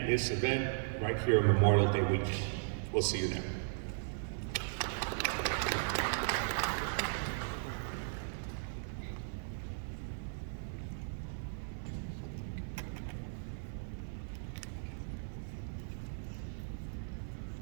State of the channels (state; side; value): silent; left; digital silence